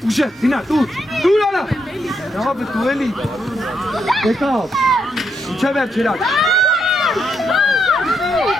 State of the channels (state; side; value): normal; both; correlation 0.79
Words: Uşa, Dina, dur ala. Ne yapı tu eli? Vekal. Uçaver çırak.